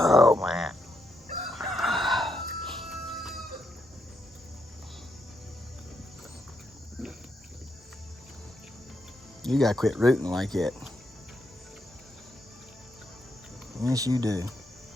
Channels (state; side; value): normal; both; correlation 0.80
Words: man. You gotta quit rooting like that. Yes, you do.